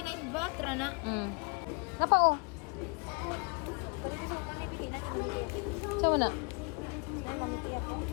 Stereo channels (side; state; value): right; quieter; 34.5 dB